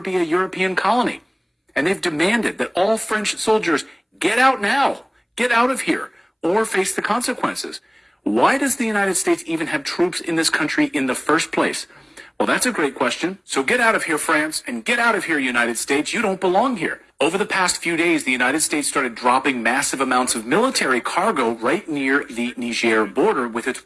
be a European colony. And they've demanded that all French soldiers get out now, get out of here, or face the consequences. Why does the United States even have troops in this country in the first place? Well, that's a great question. So get out of here, France, and get out of here, United States. You don't belong here. Over the past few days, the United States started dropping massive amounts of military cargo right near the Niger border with its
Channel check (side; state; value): both; identical; correlation 1.00